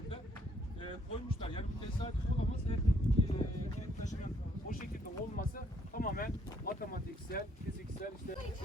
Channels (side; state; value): both; normal; correlation 0.68